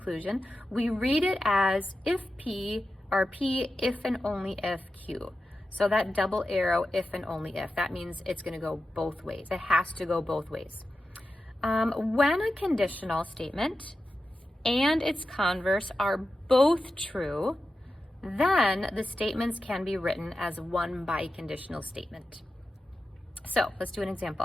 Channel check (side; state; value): both; normal; correlation 0.92